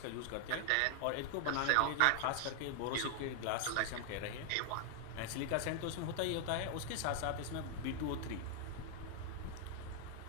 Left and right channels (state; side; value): different; both; correlation 0.00